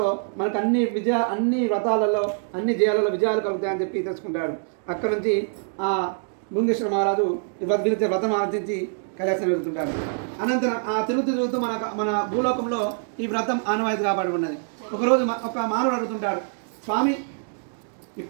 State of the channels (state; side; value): silent; left; digital silence